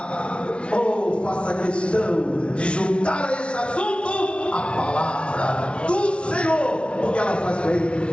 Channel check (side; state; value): right; late; 0.059 ms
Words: ou faça questão de juntar a esse assunto a palavra do Senhor, porque ela faz bem,